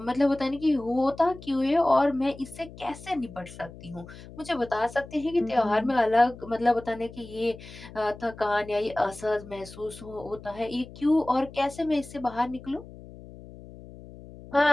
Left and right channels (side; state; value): left; noise; hum, 17 dB below the sound